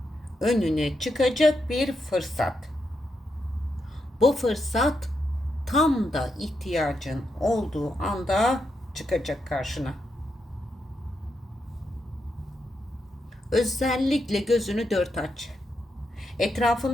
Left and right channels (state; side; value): normal; both; correlation 0.83